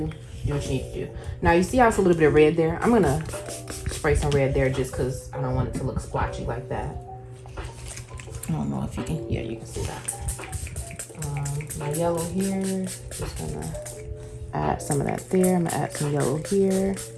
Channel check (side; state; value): both; identical; correlation 1.00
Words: what you need to do. Now, you see how it's a little bit of red there? I'm going to spray some red there just because I don't want it to look splotchy like that. I don't know if you can. Yeah, you can see that. My yellow here. Just going to add some of that there. I'm going to add some yellow here.